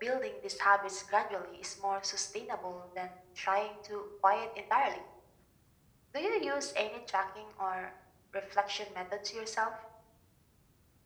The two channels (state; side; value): identical; both; correlation 1.00